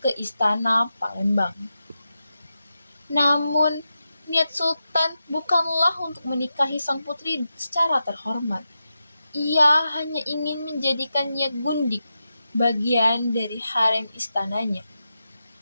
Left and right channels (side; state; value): both; inverted; correlation -0.89